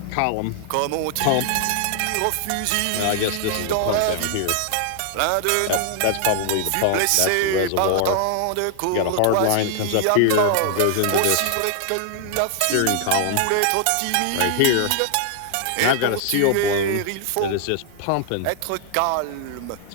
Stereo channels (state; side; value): different; both; correlation 0.00